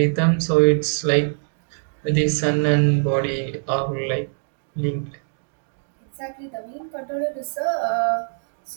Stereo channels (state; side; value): silent; left; digital silence